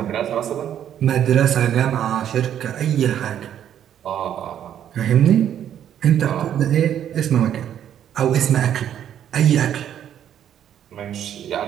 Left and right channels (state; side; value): quieter; left; 10.1 dB